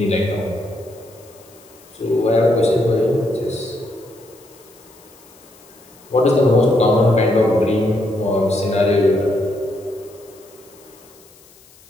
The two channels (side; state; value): left; noise; hiss, 27 dB below the sound